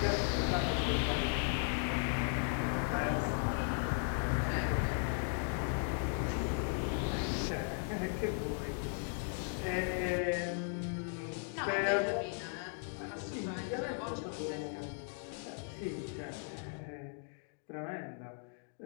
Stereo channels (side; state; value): right; silent; 53 dB below the other